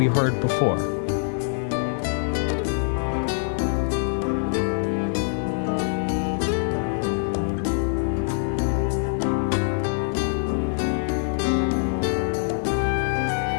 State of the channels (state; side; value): silent; right; digital silence